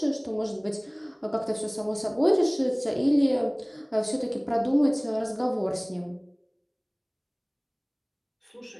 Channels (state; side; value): identical; both; correlation 1.00